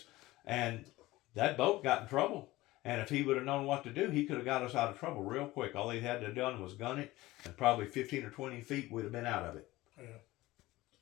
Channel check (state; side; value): quieter; right; 18.4 dB